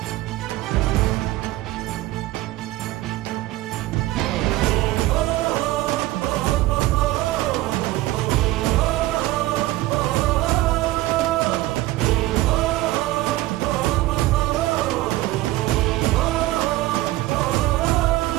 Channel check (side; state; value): left; quieter; 17.2 dB